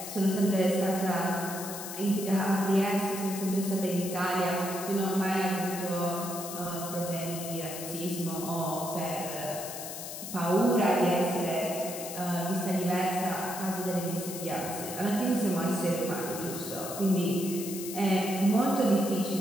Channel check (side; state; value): left; noise; hiss, 9 dB below the sound